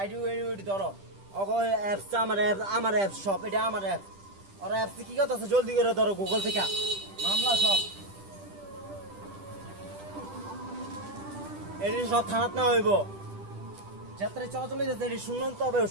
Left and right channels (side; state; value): left; late; 10 ms